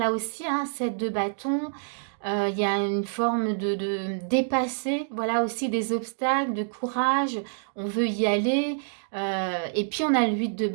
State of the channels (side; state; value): left; silent; digital silence